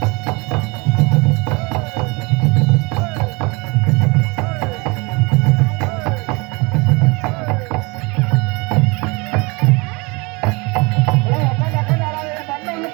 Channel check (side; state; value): left; quieter; 27.2 dB